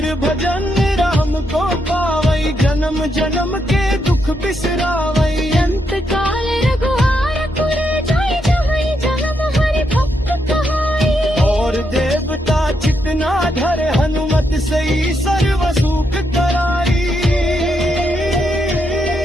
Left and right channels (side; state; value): both; normal; correlation 0.80